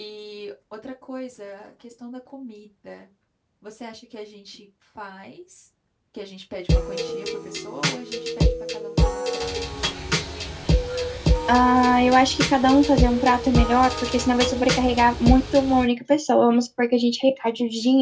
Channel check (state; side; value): identical; both; correlation 1.00